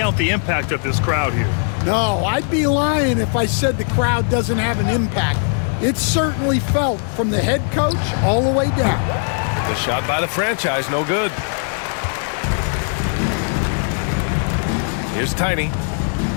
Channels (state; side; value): silent; right; 56 dB below the other